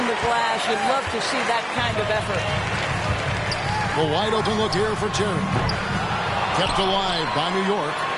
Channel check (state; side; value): identical; both; correlation 1.00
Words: the glass. You'd love to see that kind of effort. A wide open look here for Terry. Kept alive by New York.